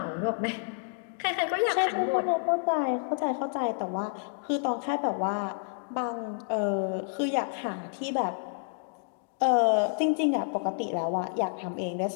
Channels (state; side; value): silent; right; digital silence